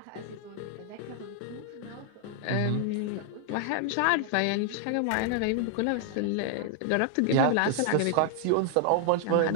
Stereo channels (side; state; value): both; different; correlation 0.00